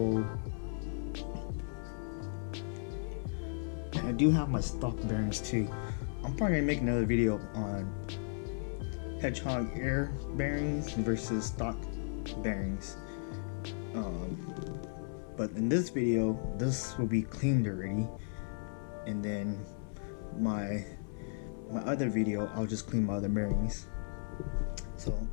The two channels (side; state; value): right; silent; 54 dB below the other